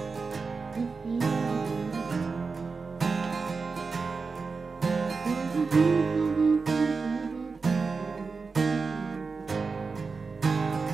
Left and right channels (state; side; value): quieter; left; 4.6 dB